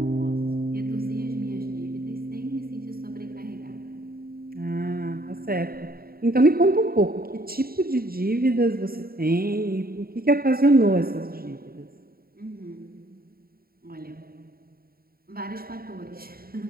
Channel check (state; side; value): late; left; 0.43 ms